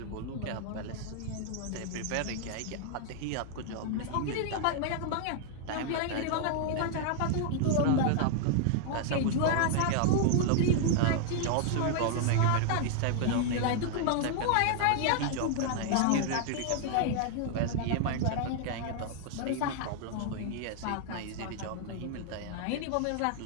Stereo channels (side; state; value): both; different; correlation 0.00